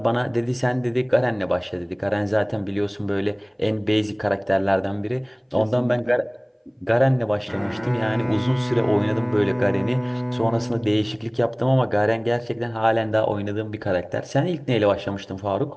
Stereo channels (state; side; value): identical; both; correlation 1.00